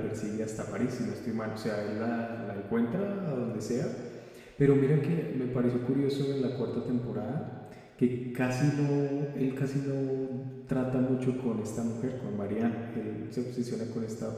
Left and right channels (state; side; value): identical; both; correlation 1.00